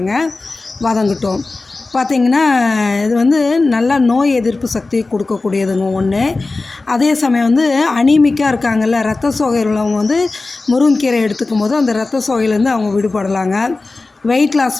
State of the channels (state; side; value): quieter; right; 3.5 dB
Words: வதங்கட்டும். பார்த்திங்கன்னா, இது வந்து நல்லா நோய் எதிர்ப்பு சக்தி கொடுக்கக்கூடியதுங்க ஒன்று. அதே சமயம் வந்து அனீமிக்காக இருக்காங்கல்ல, ரத்த சோகை உள்ளவங்க வந்து முருங்கைக்கீரை எடுத்துக்கும் போது அந்த ரத்த சோகையிலேருந்து அவங்க விடுபடலாங்க. வெயிட் லாஸ்